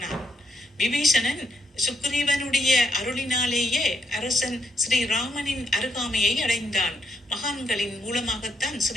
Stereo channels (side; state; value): both; normal; correlation 0.76